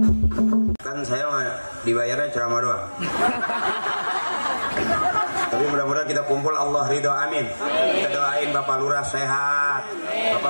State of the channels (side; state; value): both; inverted; correlation -1.00